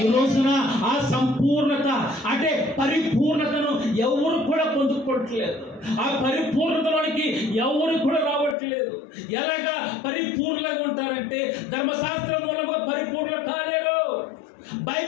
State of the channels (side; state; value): right; drops out; at 8.6 s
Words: ఈ రోజున ఆ సంపూర్ణత అంటే పరిపూర్ణతను ఎవరు కూడా పొందుకోవట్లేదు. ఆ పరిపూర్ణతలోనికి ఎవరు కూడా రావట్లేదు. ఎలాగా పరిపూర్ణంగా ఉంటారంటే ధర్మశాస్త్రం మూలంగా పరిపూర్ణ కాలేరు,